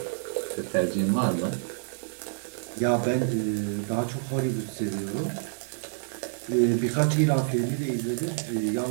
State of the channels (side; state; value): left; silent; digital silence